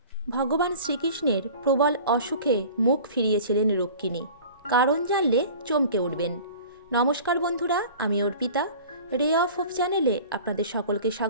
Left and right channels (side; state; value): both; inverted; correlation -0.41